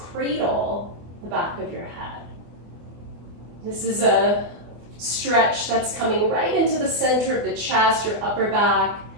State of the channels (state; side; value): late; left; 24 ms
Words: cradle the back of your head. This is a stretch that's coming right into the center of the chest, your upper back.